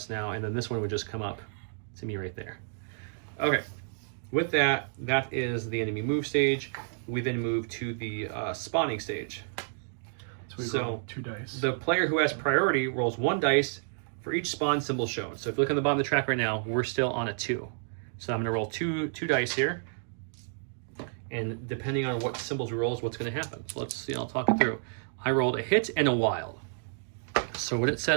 now, and then this one would just come up to me right there. Okay, with that is the enemy move stage. We then move to the spawning stage. So we roll 2 dice. The player who has priority rolls 1 dice for each spawn symbol shown. So if you look on the bottom of the track right now, we're still on a 2. So I'm going to roll two dice here, and depending on what symbols we roll is what's going to happen. So let's see, I'll talk it through. I rolled a hit and a wild. So what it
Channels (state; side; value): silent; left; digital silence